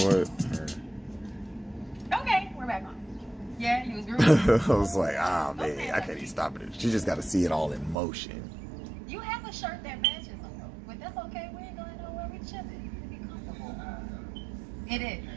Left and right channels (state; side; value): drops out; left; at 8.0 s